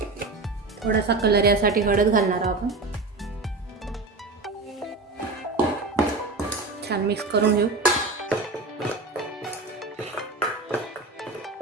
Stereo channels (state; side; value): quieter; left; 3.5 dB